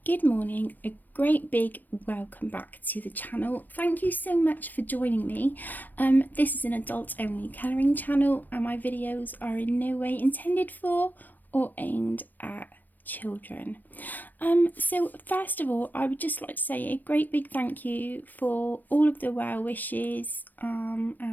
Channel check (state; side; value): late; right; 0.088 ms